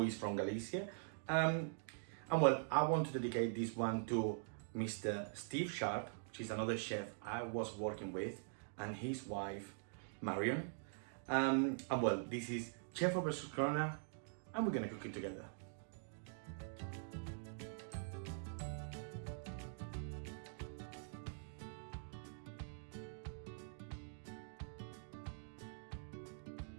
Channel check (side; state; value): left; silent; digital silence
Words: is from Galicia. And well, I want to dedicate this one to Mr. Steve Sharp, which is another chef I was working with, and his wife, Marion. And well, this is Chef versus Corona, and we're gonna cook it together.